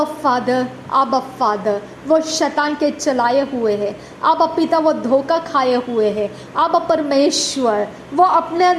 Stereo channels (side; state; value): both; identical; correlation 1.00